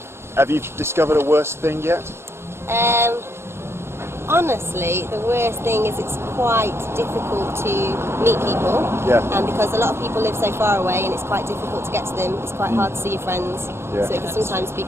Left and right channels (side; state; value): left; late; 0.12 ms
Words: Have you discovered a worse thing yet? Honestly, the worst thing is it's quite difficult to meet people. Yeah. And because a lot of people live so far away and it's quite difficult to get to them, it's quite hard to see your friends. Yeah. So it can sometimes be